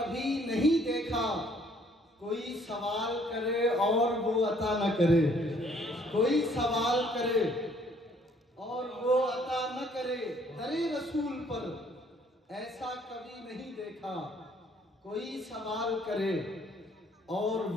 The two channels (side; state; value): both; normal; correlation 0.62